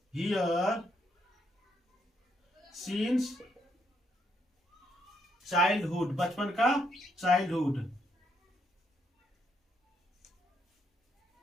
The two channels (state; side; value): normal; both; correlation 0.75